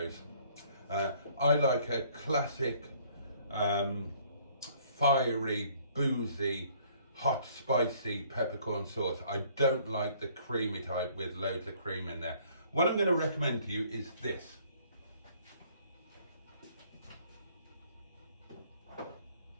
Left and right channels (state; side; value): inverted; both; correlation -0.60